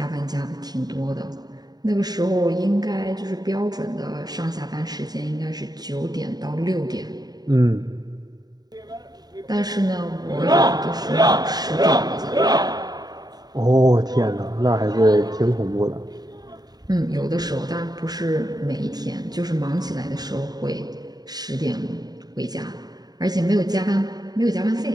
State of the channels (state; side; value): late; left; 0.19 ms